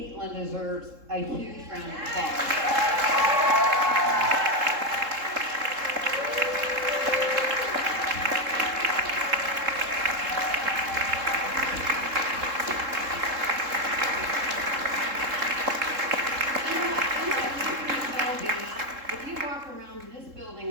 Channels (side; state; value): left; late; 3.7 ms